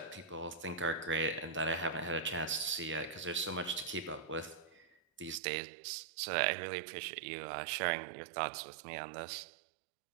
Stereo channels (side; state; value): left; drops out; at 5.4 s